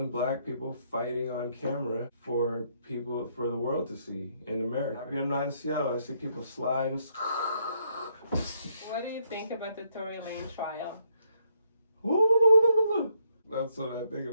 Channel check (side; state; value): both; inverted; correlation -0.73